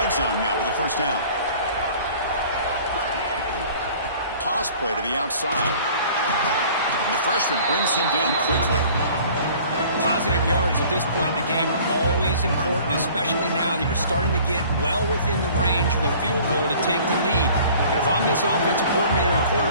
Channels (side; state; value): both; inverted; correlation -0.49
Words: zone now with a 1st down. Toss play to the outside. And the freshman brings him down quickly. Positive yards at this point in the game are always important, especially now that you're starting to get well within the range of a field goal to take the lead. But if I'm this offensive coordinator and